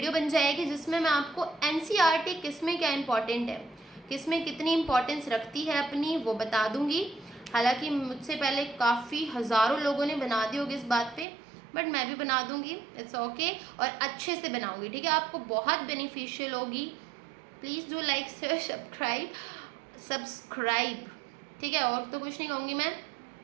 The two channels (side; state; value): left; drops out; at 11.2 s